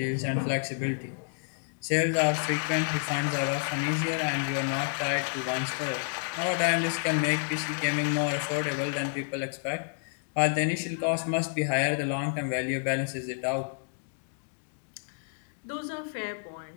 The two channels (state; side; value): silent; right; digital silence